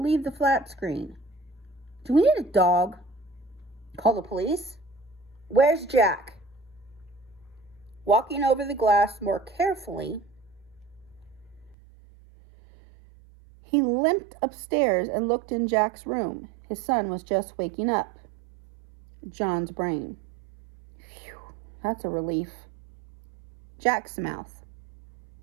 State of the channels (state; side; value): drops out; left; at 11.8 s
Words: leave the flat screen? Do we need a dog? Call the police? Where's Jack? Walking over the glass more carefully, he limped upstairs and looked in Jack's room. His son was just waking up. John's brain. Phew, that's a relief. Jack's mouth.